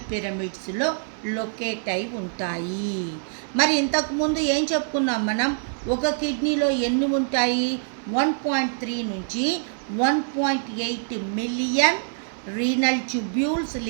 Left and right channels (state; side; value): silent; left; digital silence